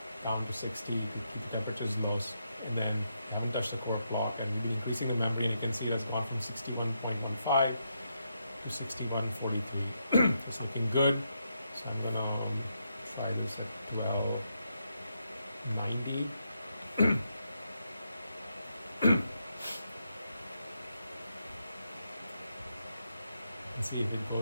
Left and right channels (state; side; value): inverted; both; correlation -0.81